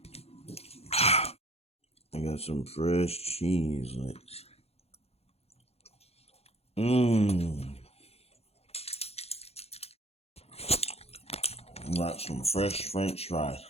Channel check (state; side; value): late; right; 0.29 ms